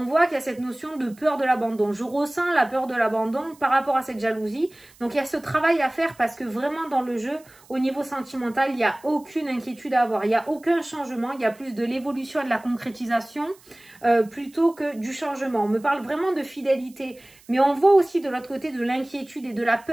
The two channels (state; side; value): noise; right; hiss, 27 dB below the sound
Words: voit qu'il y a cette notion de peur de l'abandon. Je ressens la peur de l'abandon par rapport à cette jalousie. Donc, il y a ce travail à faire parce que vraiment dans le jeu, au niveau sentimental, il n'y a aucune inquiétude à avoir. Il n'y a aucun changement. Il y a plus de l'évolution et de la concrétisation plutôt que du changement. On me parle vraiment de fidélité. Mais on voit aussi de l'autre côté de l'inquiétude et de la